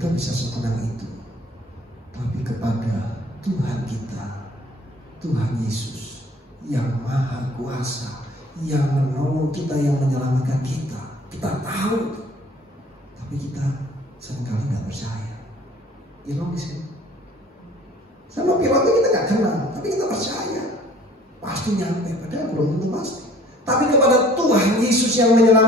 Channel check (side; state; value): both; normal; correlation 0.52